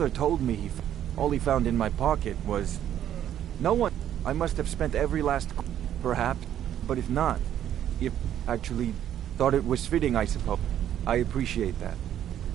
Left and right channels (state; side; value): quieter; left; 10.8 dB